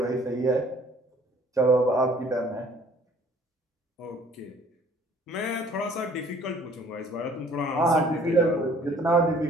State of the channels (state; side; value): normal; both; correlation 0.56